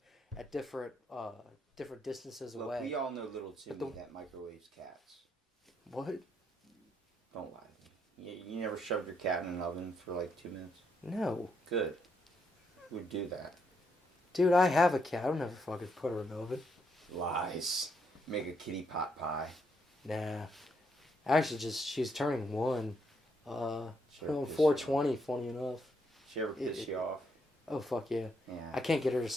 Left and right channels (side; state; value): both; normal; correlation 0.76